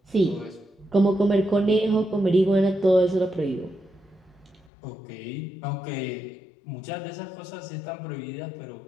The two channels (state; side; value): drops out; right; at 4.7 s